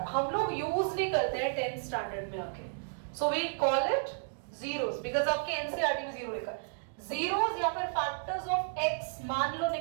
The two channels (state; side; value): silent; left; digital silence